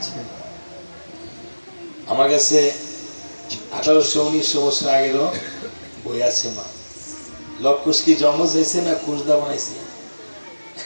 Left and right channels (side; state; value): both; inverted; correlation -1.00